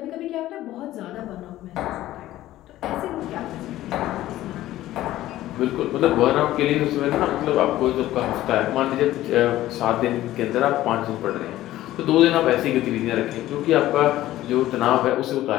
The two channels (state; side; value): quieter; right; 14.8 dB